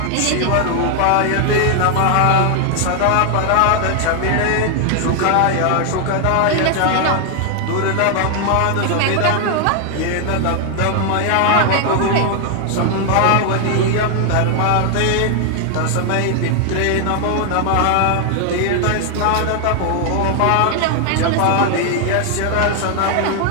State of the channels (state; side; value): different; both; correlation 0.00